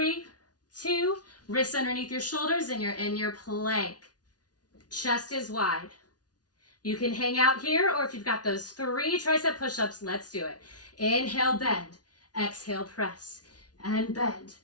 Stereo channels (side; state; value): right; late; 0.69 ms